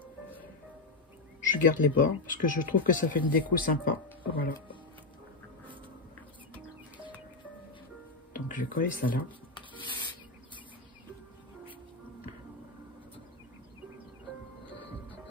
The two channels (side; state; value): right; quieter; 3.5 dB